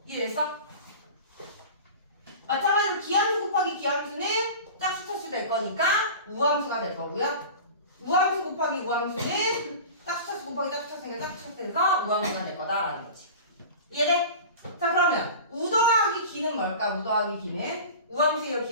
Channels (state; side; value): inverted; both; correlation -0.35